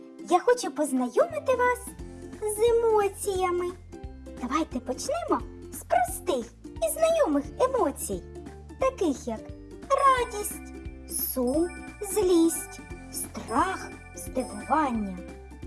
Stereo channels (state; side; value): identical; both; correlation 1.00